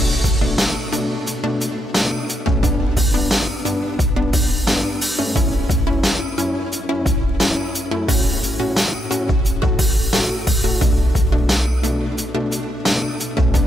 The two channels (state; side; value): normal; both; correlation 0.81